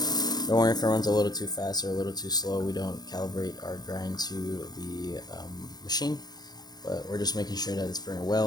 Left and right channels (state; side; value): late; right; 0.19 ms